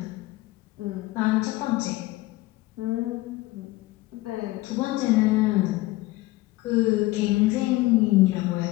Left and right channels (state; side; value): quieter; right; 19.2 dB